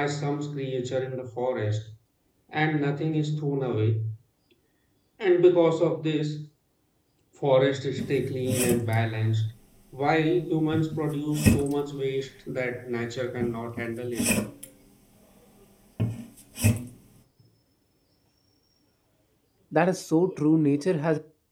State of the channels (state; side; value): identical; both; correlation 1.00